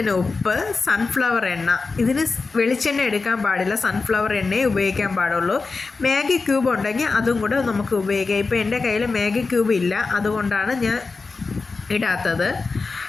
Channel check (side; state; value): right; quieter; 4.1 dB